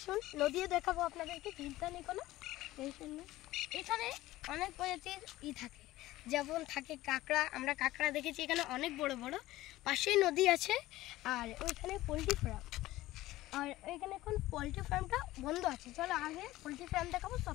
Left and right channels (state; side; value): quieter; right; 16.7 dB